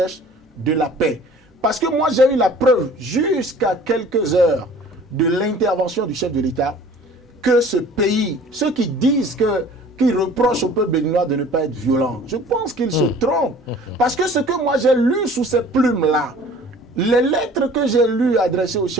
de la paix. Parce que moi, j'ai eu la preuve, jusqu'à quelques heures de l'intervention du chef de l'État, que ce pays, ceux qui disent qu'ils reprochent au peuple béninois de ne pas être violent, je pense qu'ils se trompent. Parce que ce que moi j'ai lu sous ces plumes-là, les lettres que j'ai lues adressées au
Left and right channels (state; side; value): normal; both; correlation 0.48